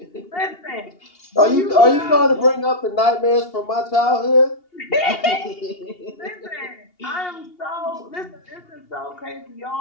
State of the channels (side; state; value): right; late; 2.8 ms